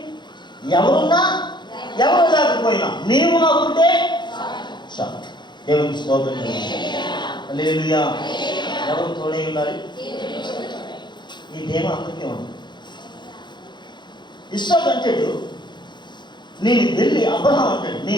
ఎవరున్నా ఎవరు లేకపోయినా నీవు నాకుంటే చాలు. దేవునికి స్తోత్రం. హల్లెలూయా. ఎవరు తోడై ఉండాలి? ఈ దేవ అందరికీ ఉంది. ఇస్సాకు అంటాడు, నేను వెళ్ళి, అబ్రహాం అంటాడు,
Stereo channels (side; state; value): right; late; 0.22 ms